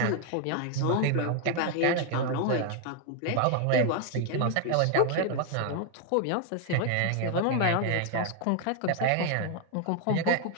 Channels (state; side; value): different; both; correlation 0.00